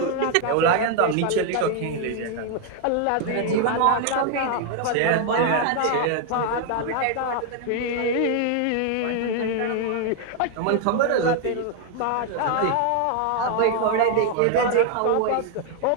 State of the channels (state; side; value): different; both; correlation 0.00